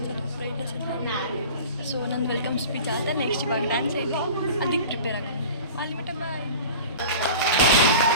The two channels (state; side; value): inverted; both; correlation -0.39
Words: ಬ್ರೈಟ್ನೆಸ್. ಸೊ ನನ್ನ ವೆಲ್ಕಮ್ ಸ್ಪೀಚ್ ಆದ ನೆಕ್ಸ್ಟ್ ಇವಾಗ ಡ್ಯಾನ್ಸ್ ಐತಿ, ಅದಕ್ಕೆ ಪ್ರಿಪೇರ್ ಆಗೋದು. ಅಲ್ಲಿ ಮಟ್ಟ ಬಾಯ್.